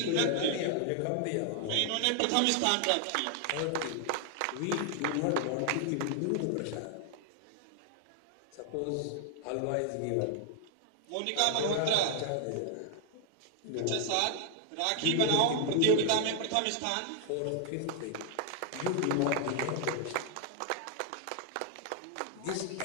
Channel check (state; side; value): different; both; correlation 0.00